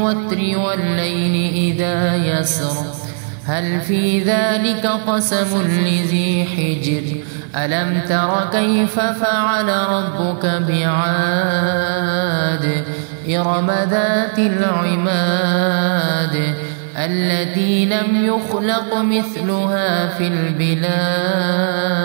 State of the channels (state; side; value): silent; left; digital silence